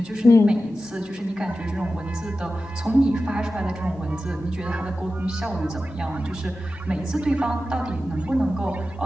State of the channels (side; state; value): both; normal; correlation 0.93